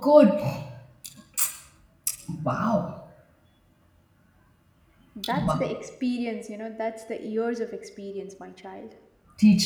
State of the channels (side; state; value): both; identical; correlation 1.00